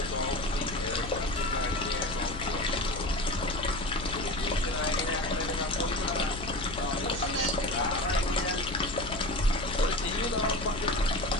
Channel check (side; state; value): left; noise; hum, 10 dB below the sound